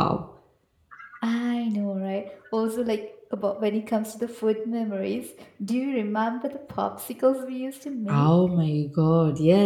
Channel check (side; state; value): both; identical; correlation 1.00